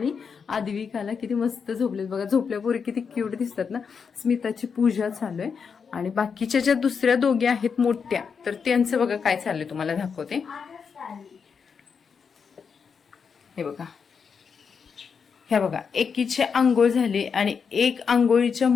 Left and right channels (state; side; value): quieter; right; 6.1 dB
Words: आद्विकाला किती मस्त झोपलेत बघा, झोपल्यापूर्वी किती क्यूट दिसतात ना. स्मिताची पूजा चालू आहे आणि बाकीच्या ज्या दुसऱ्या दोघी आहेत मोठ्या, तर त्यांचं बघा काय चाललंय तुम्हाला दाखवते. हे बघा, ह्या बघा, एकीची आंघोळ झाली आणि एक आंघोळीच्या